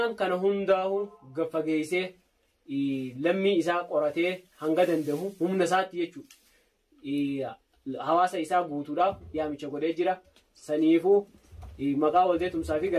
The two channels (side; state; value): both; identical; correlation 1.00